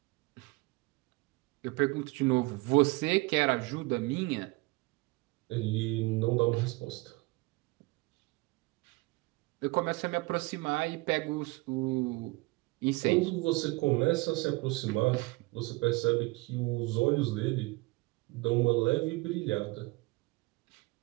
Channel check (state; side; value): quieter; left; 24.0 dB